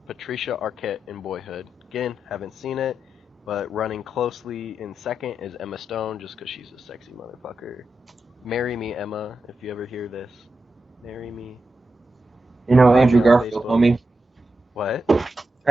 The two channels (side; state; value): both; normal; correlation 0.89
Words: Patricia Arquette in Boyhood. Again, haven't seen it, but running closely in second is Emma Stone, just 'cause she's a sexy motherfucker. Marry me, Emma, if you ever hear this. Marry me. You know Follow me Andrew on Garfield, Facebook. homie. What?